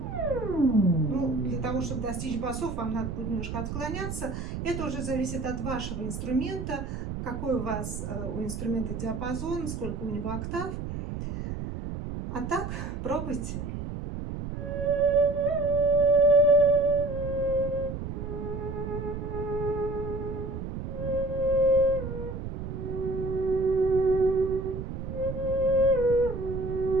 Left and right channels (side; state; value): right; noise; rumble, 6 dB below the sound